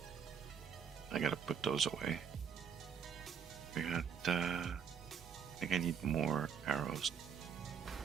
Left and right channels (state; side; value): quieter; left; 7.1 dB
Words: I gotta put those away. We got, I think I need more arrows.